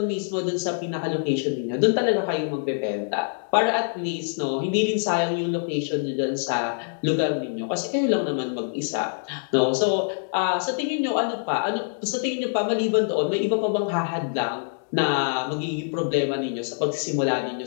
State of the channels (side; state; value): right; silent; digital silence